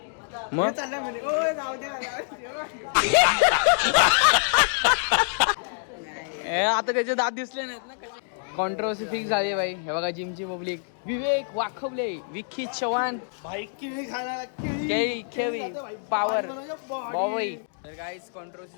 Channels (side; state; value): right; silent; digital silence